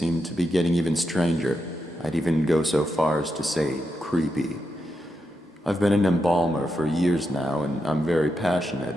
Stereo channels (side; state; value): both; normal; correlation 0.85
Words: to be getting even stranger. I'd even go so far as to say creepy. I've been an embalmer for years now, and I'm very